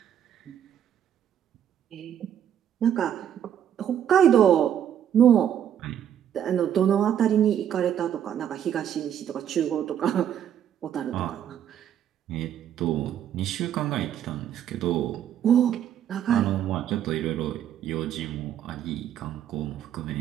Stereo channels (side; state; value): left; quieter; 9.8 dB